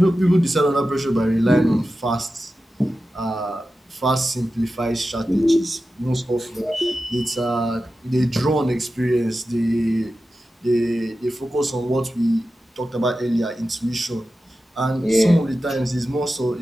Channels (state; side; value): normal; both; correlation 0.93